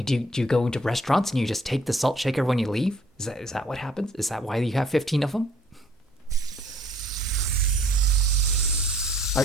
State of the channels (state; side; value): normal; both; correlation 0.60